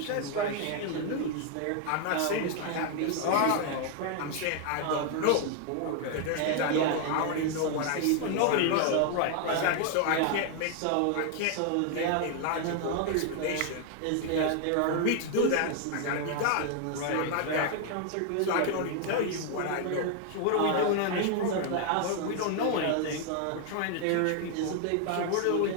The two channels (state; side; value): different; both; correlation 0.00